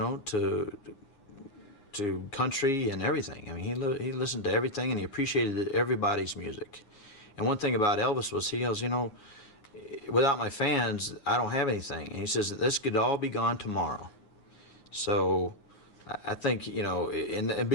to country and everything. I mean, he listened to everything, and he appreciated everybody's music. And one thing about Elvis was he goes, without my fans, I don't have anything. And he says that this could all be gone tomorrow. So I think, and the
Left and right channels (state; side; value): late; right; 9.6 ms